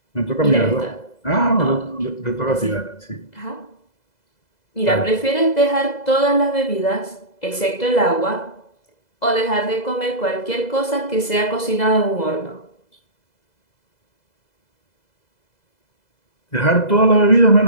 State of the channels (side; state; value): right; late; 2.0 ms